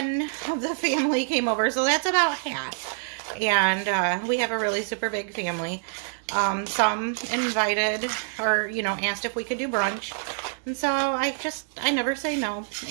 of the family came over, so that's about half. And we have a really super big family. Some invited or, asked if we could do brunch. And so I never say no.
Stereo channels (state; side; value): silent; left; digital silence